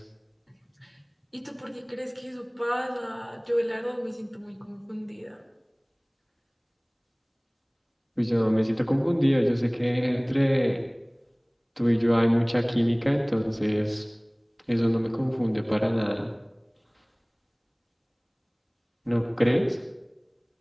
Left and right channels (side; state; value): both; identical; correlation 1.00